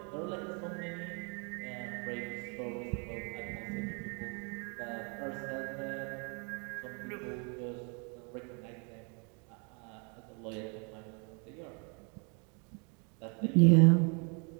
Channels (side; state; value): left; quieter; 36.3 dB